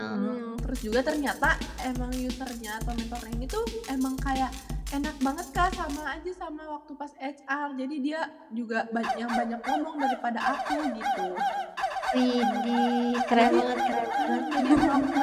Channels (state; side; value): identical; both; correlation 1.00